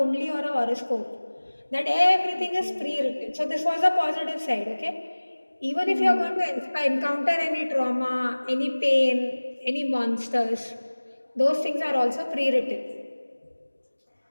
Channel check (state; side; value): inverted; both; correlation -1.00